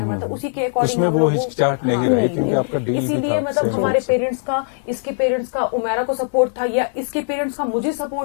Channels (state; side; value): silent; right; digital silence